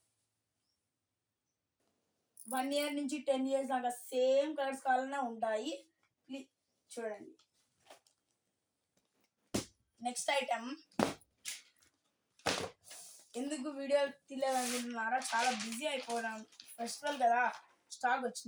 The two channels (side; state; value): both; identical; correlation 1.00